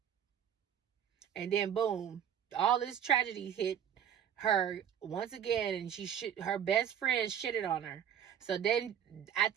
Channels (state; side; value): quieter; left; 9.0 dB